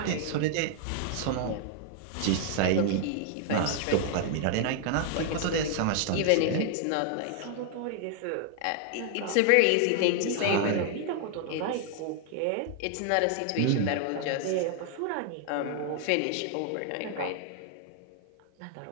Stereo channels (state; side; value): different; both; correlation 0.00